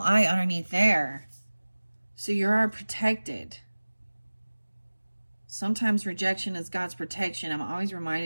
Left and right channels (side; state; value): both; inverted; correlation -1.00